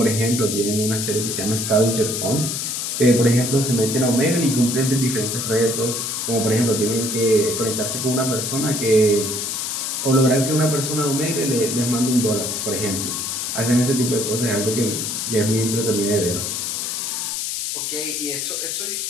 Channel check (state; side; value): noise; left; hiss, 2 dB below the sound